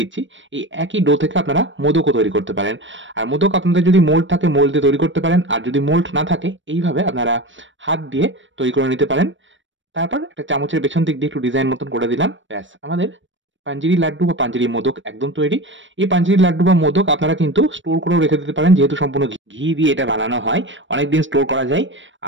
এই একই ডো থেকে আপনারা মোদকও তৈরি করতে পারেন। আর মোদক আপনাদের যদি মোল্ড থাকে মোল্ড দিয়ে তৈরি করতে পারেন। আর যদি মোল্ড না থাকে এইভাবে আপনারা হাত দিয়ে তৈরি করে নিতে পারেন। তারপর একটা চামচের পেছন দিক দিয়ে একটু ডিজাইন মতন করে দিলাম। ব্যাস, আমাদের পাঞ্জেরি লাড্ডু বা পাঞ্জেরি মোদক একদম তৈরি। এই পাঞ্জেরি লাড্ডু বা মোদক আপনারা কিন্তু স্টোর করেও রেখে দিতে পারেন, যেহেতু সম্পূর্ণ ঘি দিয়ে এটা বানানো হয়। অনেকদিন স্টোর করা যায়।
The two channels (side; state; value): left; late; 0.55 ms